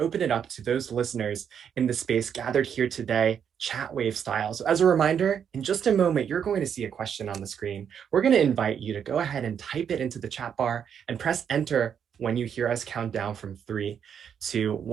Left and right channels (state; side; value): quieter; left; 8.0 dB